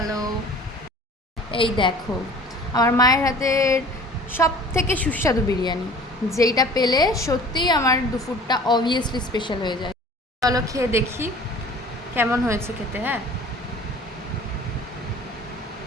এই দেখো আমার মায়ের হাতের সব থেকে সুস্বাদু বিরিয়ানি, যেইটা পেলে সত্যিই আমার দুপুরটা অবভিয়াসলি স্পেশাল হয়ে যায়। চলো খেয়ে দেখি কেমন হয়েছে খেতে। হ্যাঁ,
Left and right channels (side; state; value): both; normal; correlation 0.46